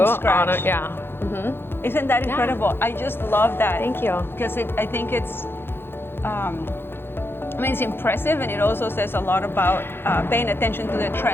scratch. Isn't that incredible? I just love that. Thank you. Because I think it's, it's impressive, and it also says a lot about paying attention to the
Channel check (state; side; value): late; right; 0.11 ms